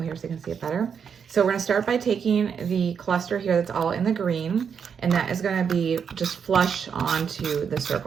here so you can see it better. So we're going to start by taking the cluster here that's all in the green, and that is going to be just flush onto the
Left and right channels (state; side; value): quieter; left; 7.0 dB